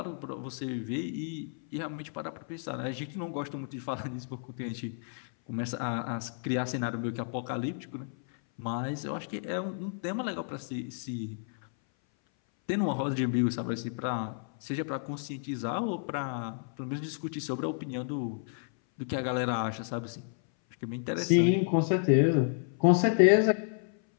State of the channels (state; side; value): silent; right; 57 dB below the other